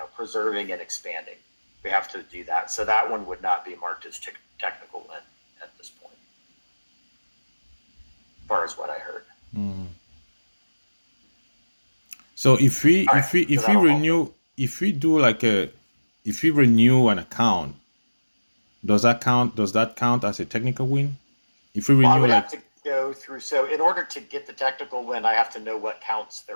preserving and expanding. We have to do that. So that one would not be marked as technical win at this point, as far as what I heard. So if we renew an account, does that count as a technical win? If we renew go through. So in order to get the technical win, I have to know what counts they're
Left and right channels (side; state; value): both; inverted; correlation -1.00